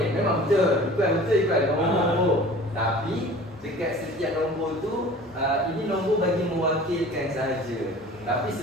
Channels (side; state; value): both; normal; correlation 0.44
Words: memang betul. Ikut nombor. Tapi dekat setiap nombor tu ini nombor bagi mewakilkan saja. Tapi